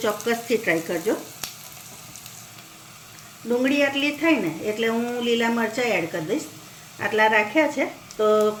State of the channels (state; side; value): identical; both; correlation 1.00